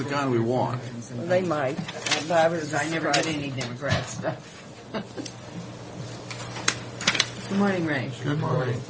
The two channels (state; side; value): identical; both; correlation 1.00